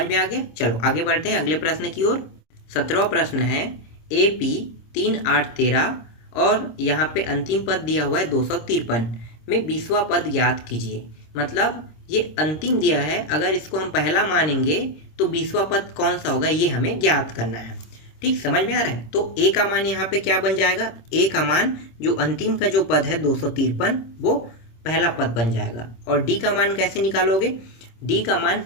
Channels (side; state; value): right; late; 26 ms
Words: में आ गया। चलो आगे बढ़ते हैं अगले प्रश्न की ओर। 17वां प्रश्न है, AP 3, 8, 13 और यहाँ पे अंतिम पद दिया हुआ है 253 में 20वां पद ज्ञात कीजिए। मतलब ये अंतिम दिया है, अगर इसको हम पहला मानेंगे तो 20वां पद कौन सा होगा, ये हमें ज्ञात करना है। ठीक, समझ में आ रहा है। तो A का मान यहाँ पे क्या बन जाएगा? A का मान जो अंतिम का जो पद है 253, वो पहला पद बन जाएगा। और D का मान कैसे निकालोगे? D का मान